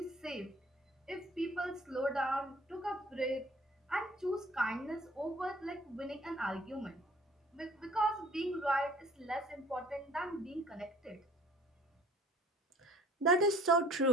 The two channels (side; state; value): both; normal; correlation 0.52